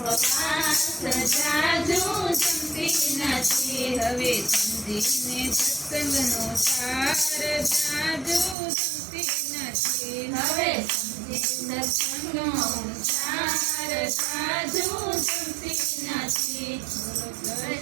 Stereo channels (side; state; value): left; drops out; at 8.6 s